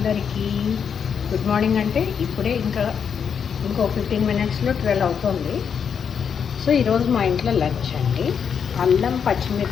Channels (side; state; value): right; quieter; 7.1 dB